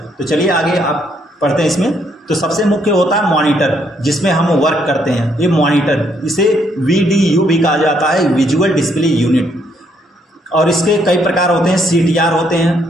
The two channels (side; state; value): both; normal; correlation 0.71